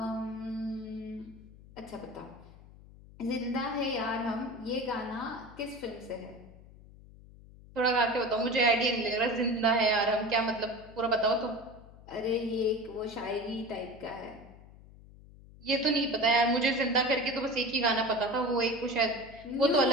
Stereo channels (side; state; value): left; noise; hum, 21 dB below the sound